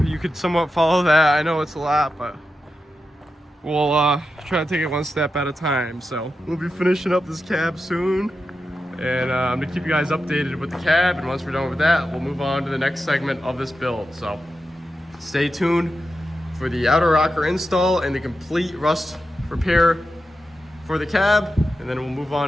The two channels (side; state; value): both; normal; correlation 0.90